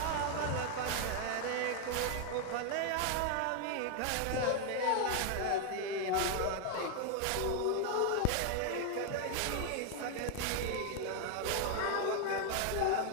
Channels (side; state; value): both; different; correlation 0.01